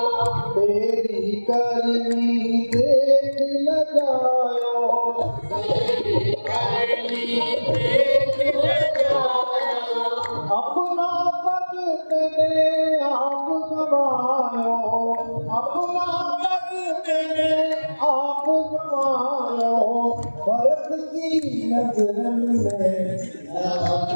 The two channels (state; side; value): inverted; both; correlation -1.00